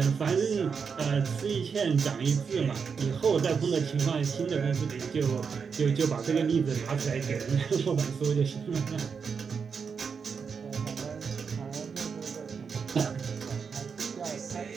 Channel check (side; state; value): left; quieter; 6.0 dB